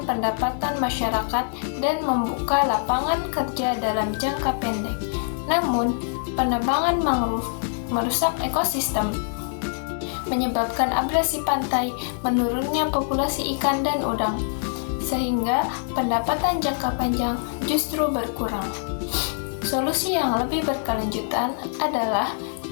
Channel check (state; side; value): silent; right; 61 dB below the other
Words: pendapatan masyarakat dan membuka lapangan kerja dalam jangka pendek. Namun, penebangan mangrove merusak ekosistem, menyebabkan abrasi pantai, menurunnya populasi ikan dan udang, sehingga pendapatan jangka panjang justru berkurang. Solusi yang lebih berkelanjutan adalah